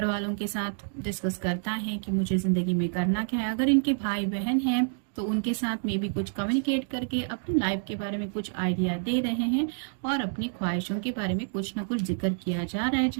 वालों के साथ डिस्कस करता है कि मुझे जिंदगी में करना क्या है। अगर इनके भाई बहन हैं तो उनके साथ में भी कुछ कम्युनिकेट करके अपनी लाइफ के बारे में कुछ आइडिया दे रहे हैं और अपनी ख्वाहिशों के बारे में कुछ ना कुछ जिक्र किया जा रहा है,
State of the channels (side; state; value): left; silent; digital silence